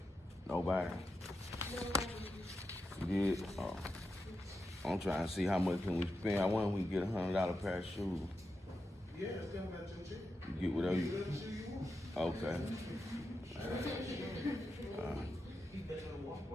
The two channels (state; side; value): normal; both; correlation 0.88